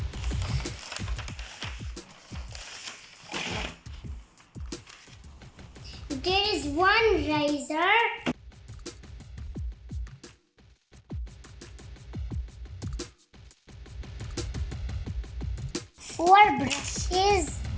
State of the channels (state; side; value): identical; both; correlation 1.00